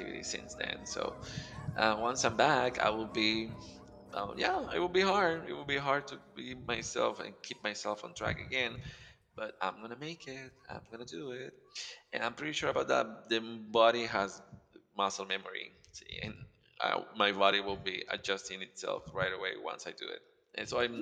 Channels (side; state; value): both; identical; correlation 1.00